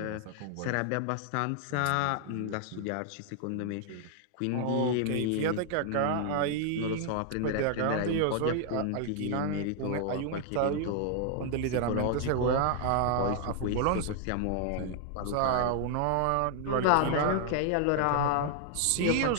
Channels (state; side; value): different; both; correlation 0.00